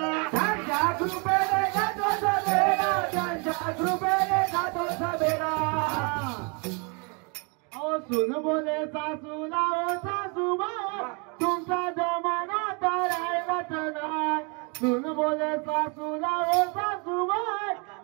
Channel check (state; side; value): quieter; left; 33.5 dB